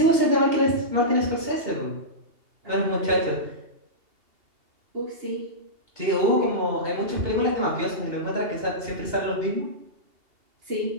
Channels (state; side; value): late; left; 2.8 ms